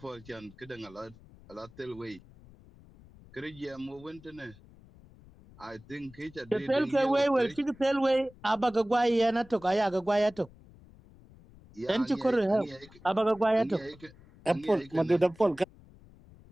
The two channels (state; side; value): noise; left; rumble, 23 dB below the sound